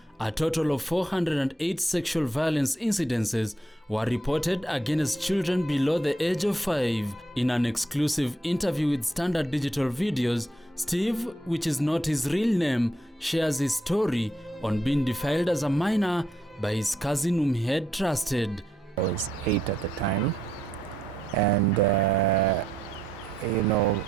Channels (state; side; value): normal; both; correlation 0.77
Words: a total of 408 sexual violence incidences were reported against children below the age of 5. In an exclusive interview with Standard Digital Videos, Steve, which is not his real name, shares his story on being defiled as a minor by his cousin whom he had trusted. I was 8 at the time, and